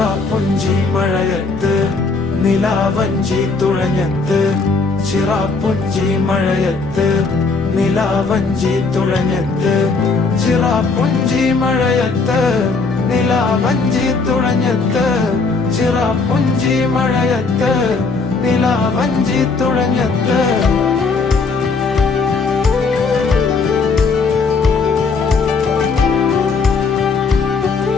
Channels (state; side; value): quieter; right; 4.3 dB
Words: മഴയത്ത് നിലാവഞ്ചി തുഴഞ്ഞത്ത്, ചിറാപ്പുഞ്ചി മഴയത്ത് നിലാവഞ്ചി തുഴഞ്ഞത്ത്, ചിറാപ്പുഞ്ചി മഴയത്ത് നിലാവഞ്ചി തുഴഞ്ഞത്ത്, ചിറാപ്പുഞ്ചി മഴയത്ത് നിലാവഞ്ചി തുഴഞ്ഞത്ത്.